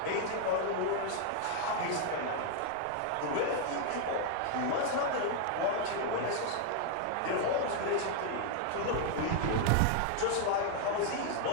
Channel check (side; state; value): both; different; correlation 0.00